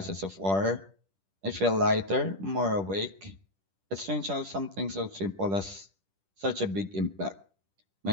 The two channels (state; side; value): late; left; 10 ms